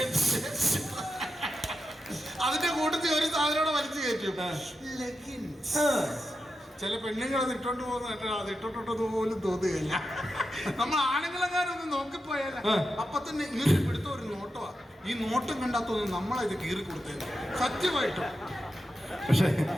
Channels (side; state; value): both; normal; correlation 0.88